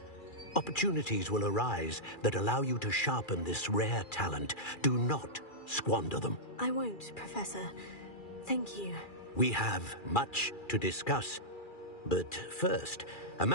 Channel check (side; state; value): right; late; 2.4 ms